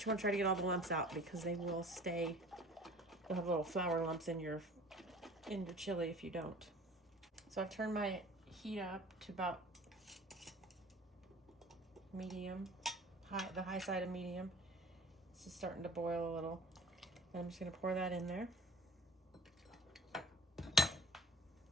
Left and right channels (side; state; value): both; normal; correlation 0.46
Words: you want to try to get all the lumps out because they will stay. You'll have little flour lumps in your chili if you don't. So I've turned my heat up to about medium, the high side of medium. It's just starting to boil a little. And I'm just going to pour that in there.